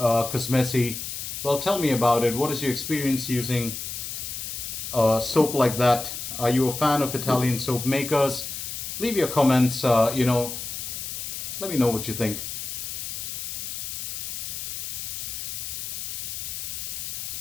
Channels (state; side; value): noise; left; hiss, 6 dB below the sound